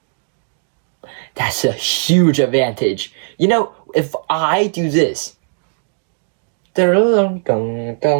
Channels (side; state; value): left; silent; digital silence